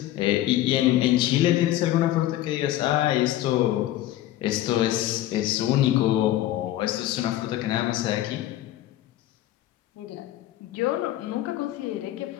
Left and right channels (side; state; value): right; quieter; 14.2 dB